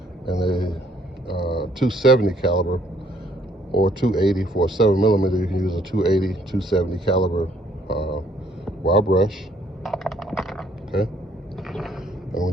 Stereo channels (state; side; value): normal; both; correlation 0.65